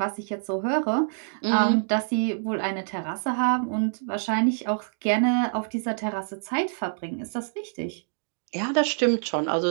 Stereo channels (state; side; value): silent; left; digital silence